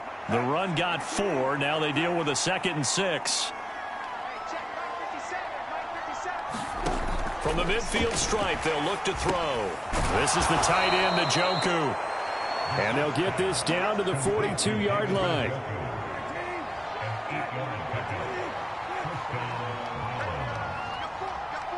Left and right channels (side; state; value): both; identical; correlation 1.00